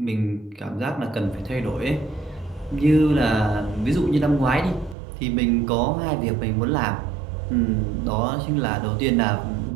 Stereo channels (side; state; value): left; drops out; at 5.0 s